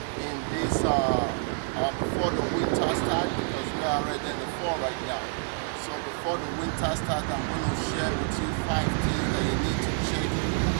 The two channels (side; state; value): left; silent; digital silence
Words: in this before the winter starts, because we are already in the fall right now. So before the winter starts, I'm going to share with you 5 things that you need to check